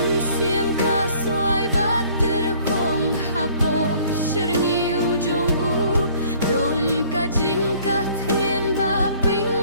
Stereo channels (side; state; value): both; inverted; correlation -0.56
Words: kaswai bater kong hapo serngi ujung don kajing kathien ba